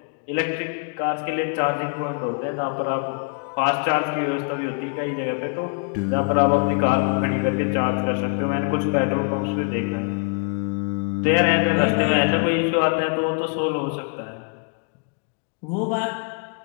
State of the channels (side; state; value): right; quieter; 38.6 dB